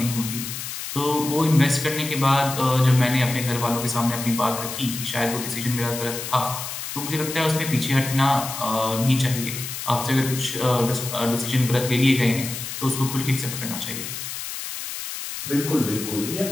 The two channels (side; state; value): left; noise; hiss, 7 dB below the sound